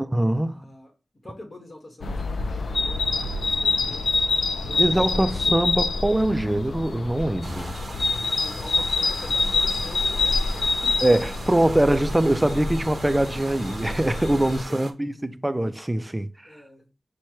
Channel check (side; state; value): both; normal; correlation 0.94